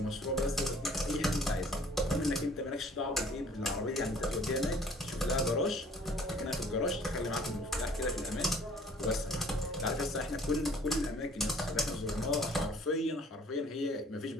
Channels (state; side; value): normal; both; correlation 0.55